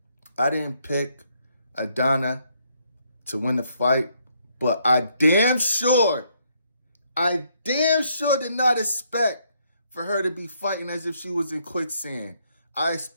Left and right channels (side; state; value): both; inverted; correlation -0.72